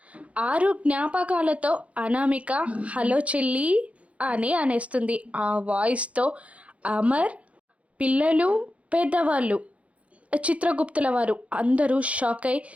6 జ్ఞాపకాలతో అనామిక హలో చెల్లి అని అనేస్తుంది. ఆ వాయిస్తో అమర్, పిల్లలు, పెద్దవాళ్ళు, చిత్రగుప్తుల వారు అందరూ షాక్ అయి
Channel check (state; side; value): late; left; 0.064 ms